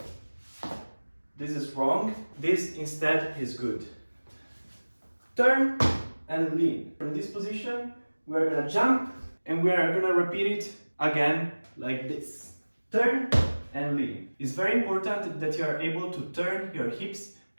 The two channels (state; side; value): inverted; both; correlation -1.00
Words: This is wrong. This instead is good. Turn and lean. From this position, we're gonna jump and we're gonna repeat it again like this. Turn and lean. It's very important that you are able to turn your hips